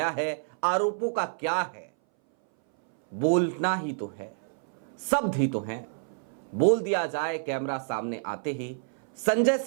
है। आरोपों का क्या है, बोलना ही तो है, शब्द ही तो हैं, बोल दिया जाए कैमरा सामने आते ही। संजय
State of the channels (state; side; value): silent; left; 59 dB below the other